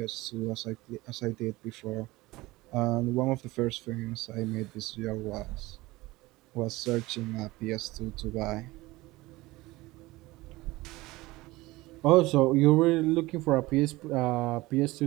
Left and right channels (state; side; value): quieter; left; 20.1 dB